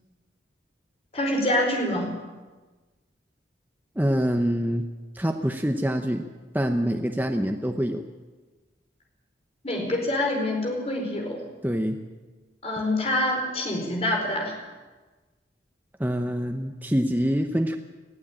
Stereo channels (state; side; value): normal; both; correlation 0.69